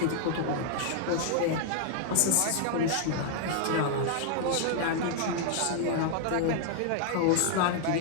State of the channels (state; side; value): different; both; correlation 0.00